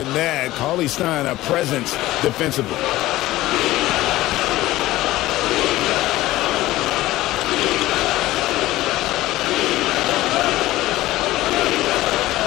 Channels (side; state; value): right; quieter; 16.8 dB